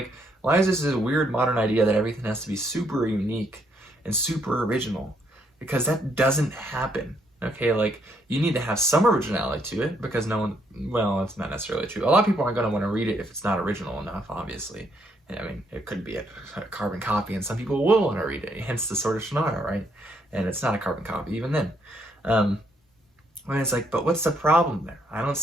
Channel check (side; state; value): both; normal; correlation 0.72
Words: why is this a weird modern idea that everything has to be super unique and super original? Because that doesn't happen. Okay, like, you need to have some originality to it, because no one, well, it's not necessarily true. A lot of people aren't going to want to read it if it's not original enough, obviously. I mean, it could be a carbon copy, and some people will want to read it, hence the Sword of Shannara, right? And it's not a carbon copy, even then. When it's like, but what's the problem there? I don't